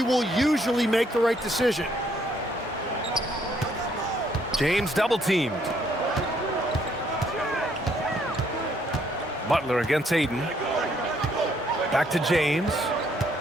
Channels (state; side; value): normal; both; correlation 0.69